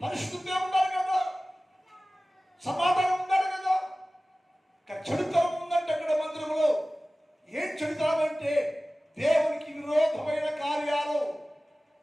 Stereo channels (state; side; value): normal; both; correlation 0.97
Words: పరిశుద్ధంగా ఉండాలి కదా, సమాధానం ఉండాలి కదా. చెడుతనం ఉందంటే అక్కడ మందిరంలో ఏం చెడుతనం అంటే దేవునికి విరోధమైన కార్యాలు,